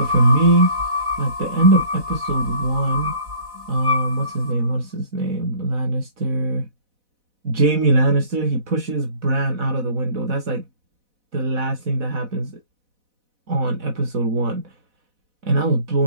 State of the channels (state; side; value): late; left; 4.1 ms